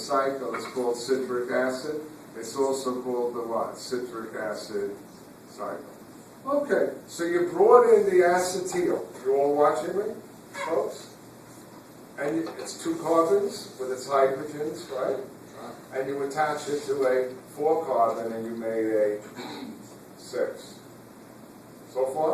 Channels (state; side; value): identical; both; correlation 1.00